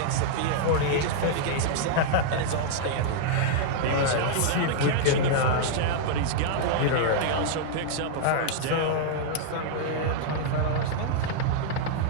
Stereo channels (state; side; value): different; both; correlation -0.01